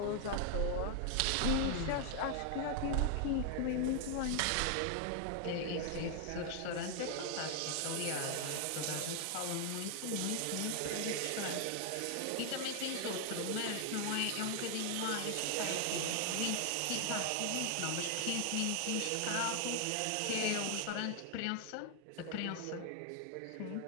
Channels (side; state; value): both; different; correlation 0.00